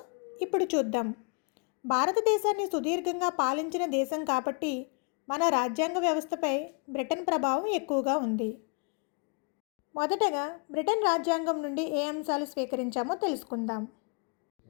ఇప్పుడు చూద్దాం. భారతదేశాన్ని సుదీర్ఘంగా పాలించిన దేశం కాబట్టి మన రాజ్యాంగ వ్యవస్థపై బ్రిటన్ ప్రభావం ఎక్కువగా ఉంది. మొదటగా బ్రిటన్ రాజ్యాంగం నుండి ఏ అంశాలు స్వీకరించామో తెలుసుకుందాం.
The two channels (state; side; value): quieter; right; 35.2 dB